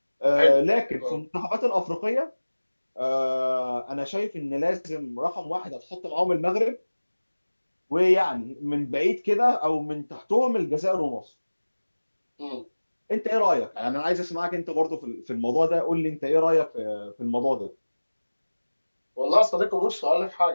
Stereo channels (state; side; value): inverted; both; correlation -1.00